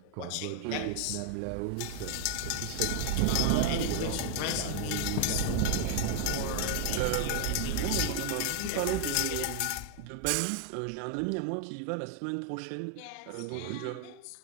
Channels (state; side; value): different; both; correlation 0.00